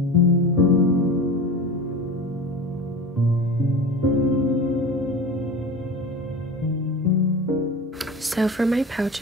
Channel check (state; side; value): normal; both; correlation 0.31